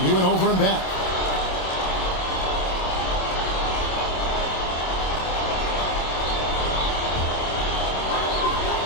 He went over and back.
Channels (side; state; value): right; late; 27 ms